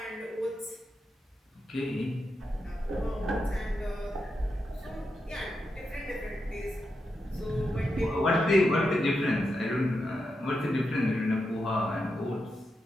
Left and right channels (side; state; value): both; normal; correlation 0.86